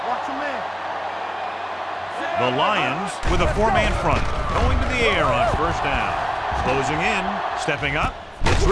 Watch a man. The Lions with a four-man front, going to the air on first down. Closing in, stepping up, gets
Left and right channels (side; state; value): both; identical; correlation 1.00